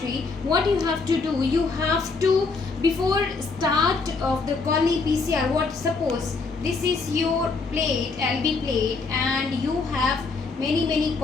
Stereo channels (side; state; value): right; quieter; 4.2 dB